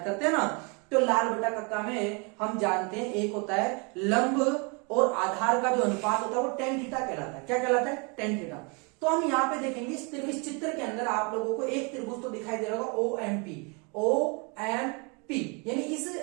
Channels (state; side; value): quieter; left; 32.5 dB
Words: करते हैं ना। तो लाल बटा कक्का में हम जानते हैं एक होता है लंब और आधार का जो अनुपात होता है वो टेन थीटा कहलाता है। क्या कहलाता है? Tan theta. तो हम यहाँ पे देखेंगे इस चित्र के अंदर आप लोगों को एक त्रिभुज तो दिखाई दे रहा होगा OMP। पी, यानी इस